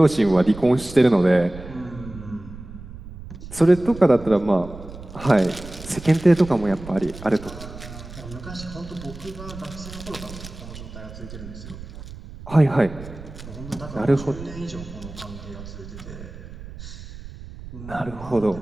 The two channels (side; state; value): right; noise; rumble, 14 dB below the sound